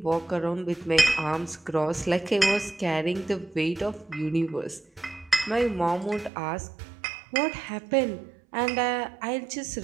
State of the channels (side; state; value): left; drops out; at 6.3 s